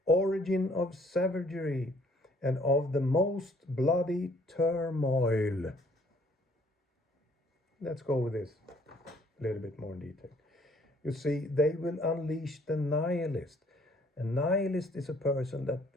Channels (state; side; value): normal; both; correlation 0.62